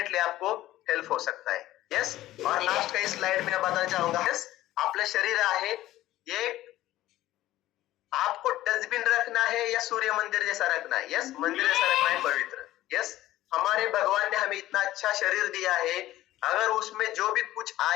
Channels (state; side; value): quieter; right; 15.1 dB